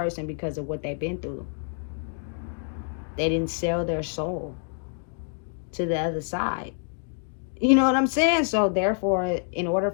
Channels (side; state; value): right; silent; 60 dB below the other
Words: because of what they've been through. They didn't sell their soul to the other side. You know what I'm saying? So therefore, in order